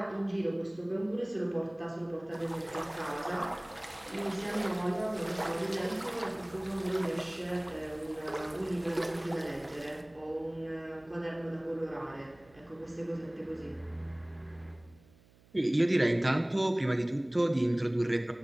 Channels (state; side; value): noise; right; hum, 27 dB below the sound